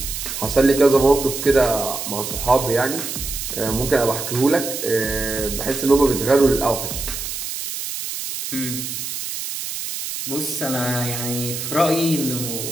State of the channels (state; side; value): noise; right; hiss, 6 dB below the sound